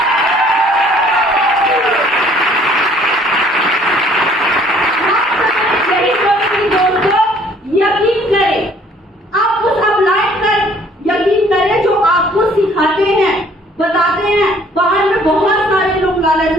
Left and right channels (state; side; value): normal; both; correlation 0.58